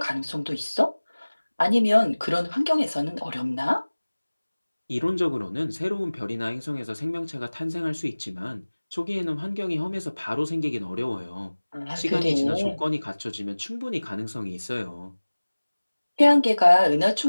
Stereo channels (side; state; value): both; inverted; correlation -1.00